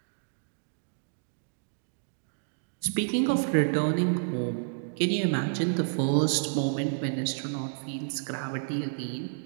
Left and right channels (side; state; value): left; silent; digital silence